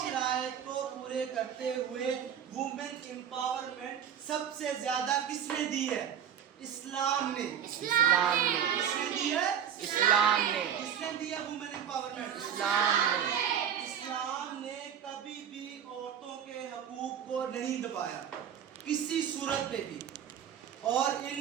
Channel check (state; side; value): quieter; left; 8.8 dB